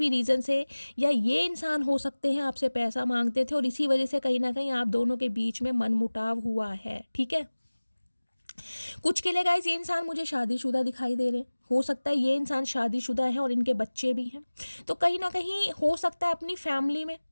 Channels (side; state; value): both; inverted; correlation -1.00